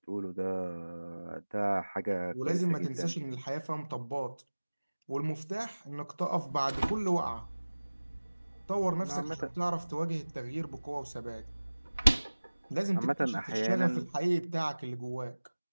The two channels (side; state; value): both; inverted; correlation -1.00